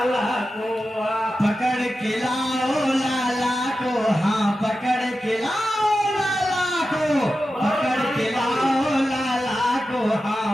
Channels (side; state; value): both; normal; correlation 0.92